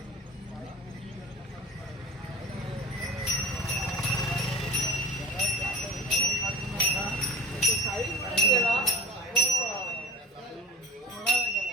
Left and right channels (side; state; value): both; normal; correlation 0.36